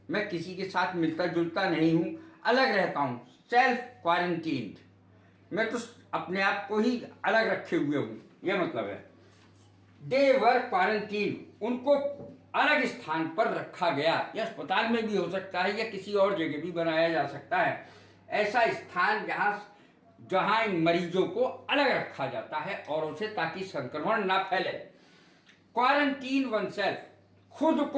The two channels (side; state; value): both; identical; correlation 1.00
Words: मैं किसी के साथ मिलता जुलता नहीं हूं, अलग रहता हूं। सेल्फ क्वारंटीन, मैं तो अपने आप को ही अलग रखे हुए हूं, यह मतलब है। दे वर क्वारंटीन, उनको अलग स्थान पर रखा गया। यह अस्पताल में भी हो सकता है या किसी और जगह भी बनाया जा सकता है, ऐसा स्थान जहां इन मरीजों को अलग रखा जाता है औरों से, ताकि संक्रमण ना फैले। क्वारंटीन वन सेल्फ, खुद